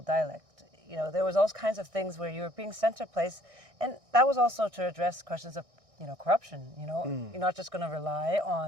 dialect. There was all kinds of things where you were being sent to a place, and that was also to address questions of, corruption. You're not just going to rely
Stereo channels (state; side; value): late; left; 1.6 ms